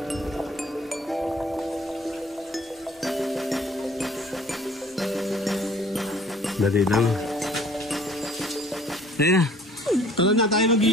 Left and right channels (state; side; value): normal; both; correlation 0.55